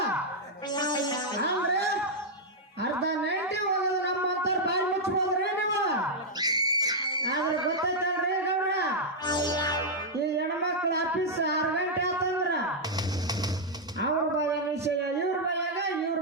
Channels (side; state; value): both; normal; correlation -0.04